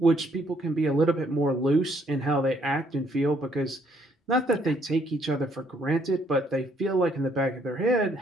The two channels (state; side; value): normal; both; correlation 0.68